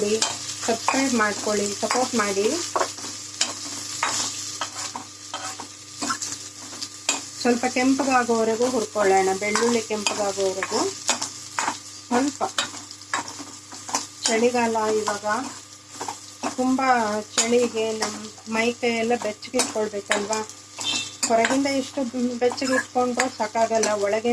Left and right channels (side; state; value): both; identical; correlation 1.00